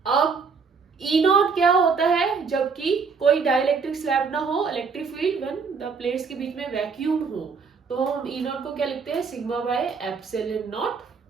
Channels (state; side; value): quieter; left; 5.3 dB